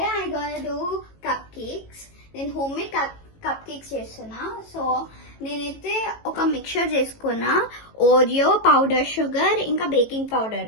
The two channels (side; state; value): right; late; 18 ms